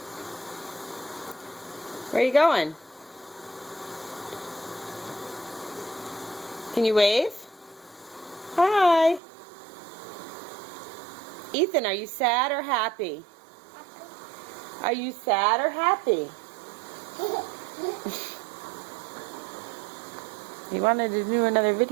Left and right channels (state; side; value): drops out; left; at 9.2 s